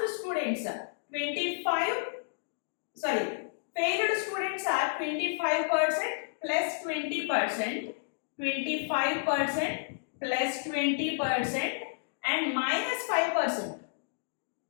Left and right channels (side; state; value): right; silent; digital silence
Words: students failed students are 25% plus 20%, 25% plus 20% and minus 5%,